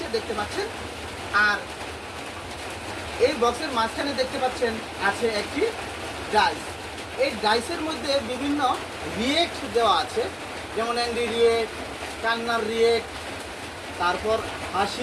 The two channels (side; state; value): both; identical; correlation 1.00